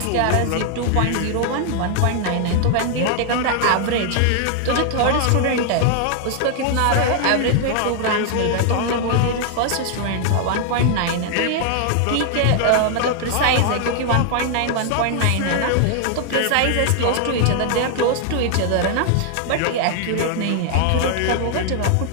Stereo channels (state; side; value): different; both; correlation 0.00